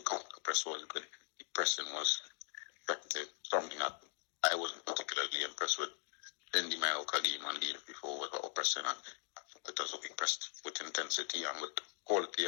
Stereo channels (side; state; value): right; silent; 51 dB below the other